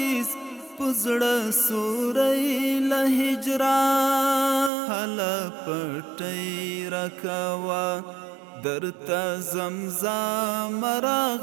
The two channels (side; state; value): left; drops out; at 4.7 s